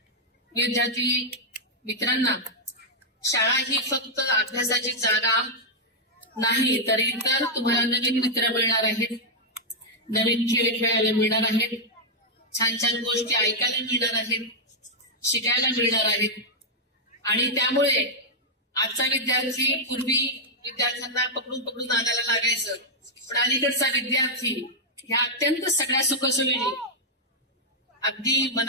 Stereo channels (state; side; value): normal; both; correlation -0.04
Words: विद्यार्थी मित्रांना, शाळा ही फक्त अभ्यासाची जागा नाही, तर इतर तुम्हाला नवीन मित्र मिळणार आहेत, नवीन खेळ खेळायला मिळणार आहेत, छान छान गोष्टी ऐकायला मिळणार आहेत, शिकायला मिळणार आहेत. आणि त्यामुळे आजचा विद्यार्थी, पूर्वी विद्यार्थ्यांना पकडून पकडून नादाला लागायचं, पण अलीकडचा विद्यार्थी ह्या अत्यंत सगळ्या सुखसोयीने अगदी